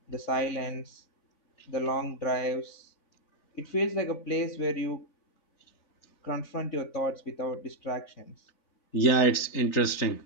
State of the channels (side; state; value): right; late; 3.9 ms